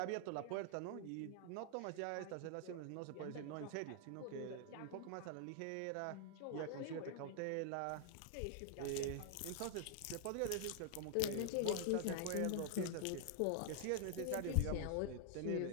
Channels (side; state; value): both; different; correlation 0.00